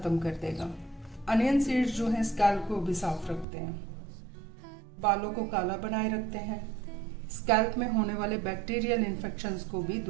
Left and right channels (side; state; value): left; drops out; at 3.5 s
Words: कर देगा। अनियन सीड्स जो हैं स्कैल्प को भी साफ रखते हैं, बालों को काला बनाए रखते हैं, स्कैल्प में होने वाले बैक्टीरियल इन्फेक्शंस को भी